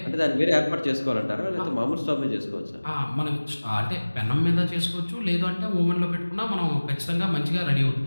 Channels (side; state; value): both; inverted; correlation -1.00